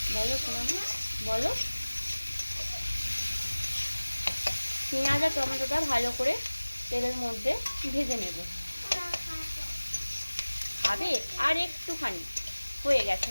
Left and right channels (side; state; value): both; inverted; correlation -1.00